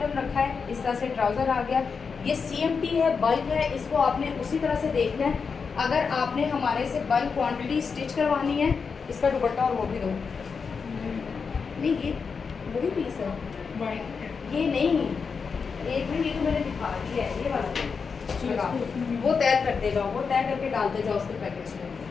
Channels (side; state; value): right; quieter; 5.5 dB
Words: रखा है, इस तरह से ट्राउज़र आ गया। ये CMT है, बल्क है, इसको आपने उसी तरह से देखना है। अगर आपने हमारे से बल्क क्वांटिटी स्टिच करवानी है, इसका दुपट्टा और वो भी दो। नहीं ये वही पीस है, ये नहीं, एक मिनट, ये तो मैंने दिखा दिया है, ये वाला वो तय करते जाओ, वो तय करके डालते जाओ उसके पैकेज में।